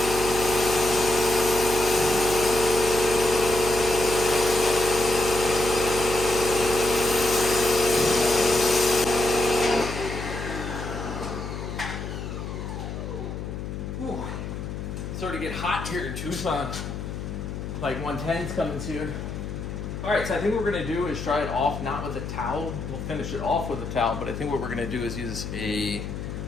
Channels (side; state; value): left; noise; hum, 7 dB below the sound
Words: starting to get hot here in Tucson. Like 110's coming soon. All right, so I think what we're gonna do is try it off, not with a towel. We'll finish it off with a towel, but I think what we're gonna do is use a